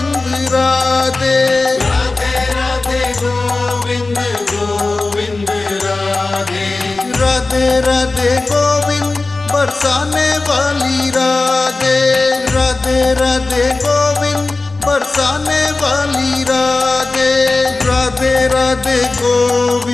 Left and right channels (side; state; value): right; quieter; 3.4 dB